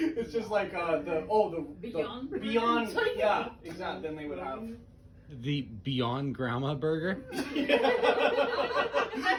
just like Beyond. Beyond. Yeah, exactly. Then they would have The Beyond Grandma Burger? the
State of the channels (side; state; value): both; identical; correlation 1.00